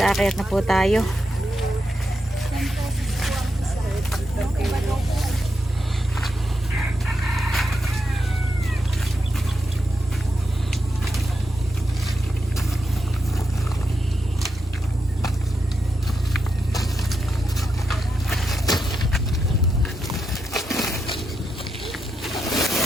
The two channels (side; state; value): both; normal; correlation 0.85